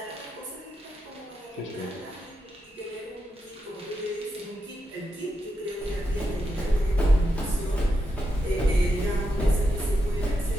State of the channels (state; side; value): normal; both; correlation 0.85